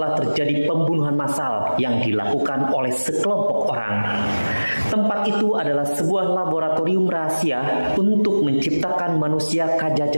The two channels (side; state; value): both; inverted; correlation -1.00